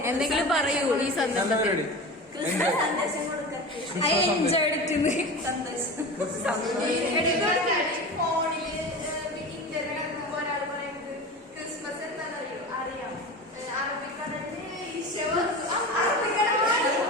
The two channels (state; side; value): normal; both; correlation 0.30